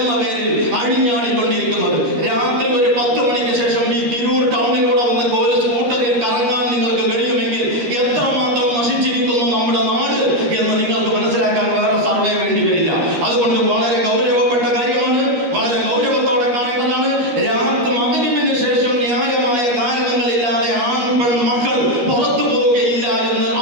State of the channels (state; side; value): late; left; 13 ms